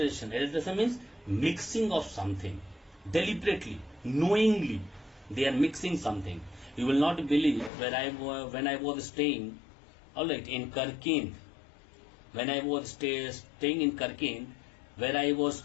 Adulteration means mixing of something deliberately, knowingly. They are mixing something. You will not believe when I was staying, alright, in Karkend. When I was staying in Karkend, where I was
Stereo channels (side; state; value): right; drops out; at 7.7 s